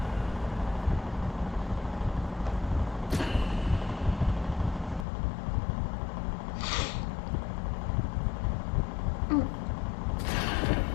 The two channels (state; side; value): drops out; right; at 5.1 s